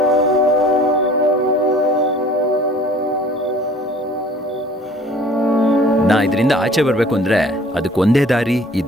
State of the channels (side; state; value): both; normal; correlation 0.50